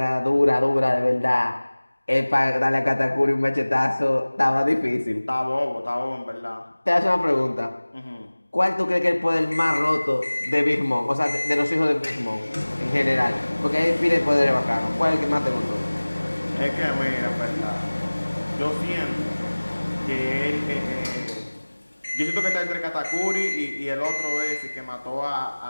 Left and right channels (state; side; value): inverted; both; correlation -1.00